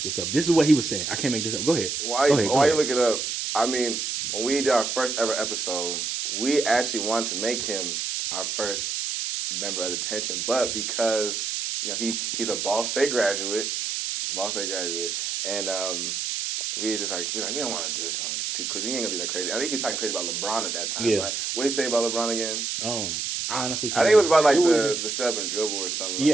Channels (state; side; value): noise; right; hiss, 2 dB below the sound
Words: this up. This is what he was saying. I can't make this up. Go ahead. Why you look it up? I mean, when we did our first ever episode, we actually wanted to make him our first member of the detention, but because he's a Ball State graduate, and we was like we don't want to do it to him too quick. He ain't gonna do that crazy. I think he was talking crazy about LeBron at that time. Yeah. Right? What did he say about LeBron again? I honestly can't. I think it was about like the shove and dribble or something